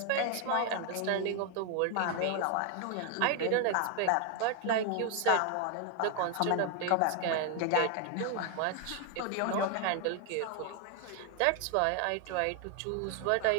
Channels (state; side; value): different; both; correlation 0.01